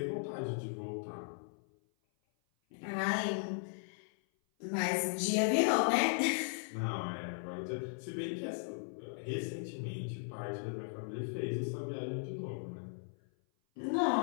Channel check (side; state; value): right; silent; 53 dB below the other